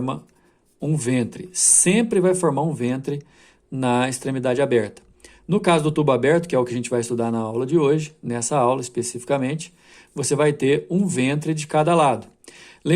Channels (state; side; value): identical; both; correlation 1.00